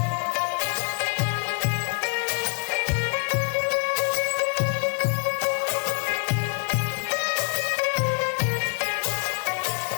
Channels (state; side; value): quieter; right; 37.6 dB